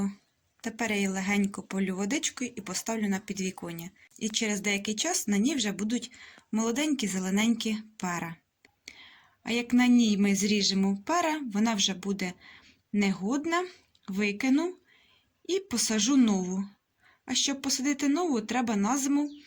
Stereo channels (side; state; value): both; identical; correlation 1.00